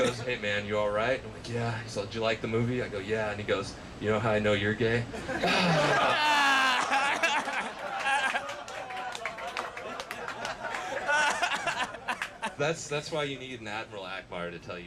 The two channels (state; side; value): identical; both; correlation 1.00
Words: hey man, you all right? I'm like, yeah. He's like, did you like the movie? I go, yeah. And he goes, you know how I know you're gay? That's why you need an Admiral Akbar to tell